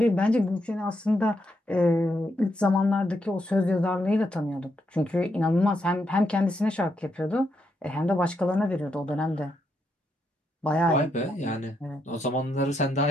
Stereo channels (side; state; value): both; normal; correlation 0.80